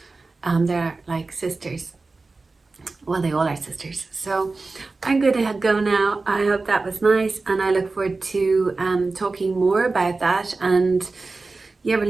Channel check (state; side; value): quieter; left; 3.7 dB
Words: They're like sisters. Well, they all are sisters. So I'm going to go now. I hope that was nice, and I look forward to talking more about that, and yeah,